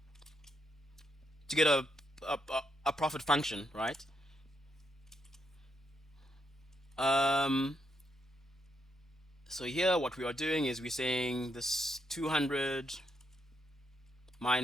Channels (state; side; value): normal; both; correlation 0.79